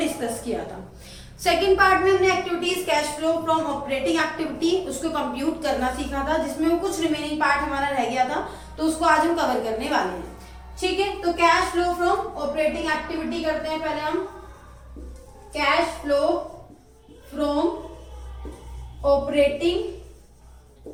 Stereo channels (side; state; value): both; identical; correlation 1.00